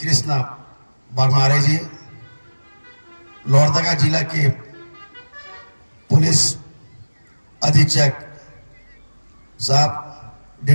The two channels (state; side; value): inverted; both; correlation -1.00